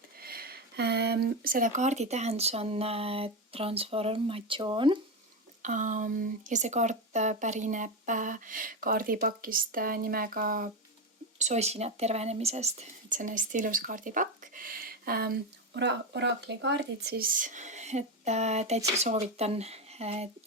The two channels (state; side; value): normal; both; correlation 0.13